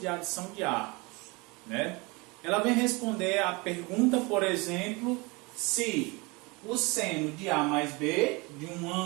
adição de arcos, né? Ela vem responder a pergunta, por exemplo, se o seno de A mais B, de um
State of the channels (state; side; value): quieter; left; 26.4 dB